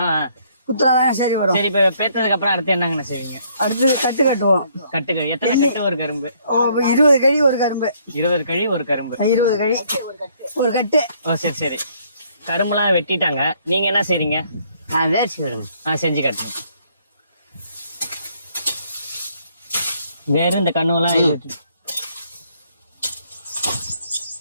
குத்துறாதான் சரி வரும். சரி, இப்ப பேத்ததுக்கு அப்புறம் அடுத்து என்னங்கண்ணா செய்வீங்க? அடுத்தது கட்டு கட்டுவோம். கட்டுங்க. எத்தனை கட்டு ஒரு கரும்பு? 20 கழி ஒரு கரும்பு. 20 கழி ஒரு கரும்பு. 20 கழி ஒரு கட்டு. சரி சரி. கரும்புலாம் வெட்டிட்டாங்க, நீங்க என்ன செய்றீங்க? வேர்ச்சி விடுங்க. செஞ்சு காட்டுங்க. வேற இந்த கண்ணுலாம்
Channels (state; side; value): inverted; both; correlation -0.66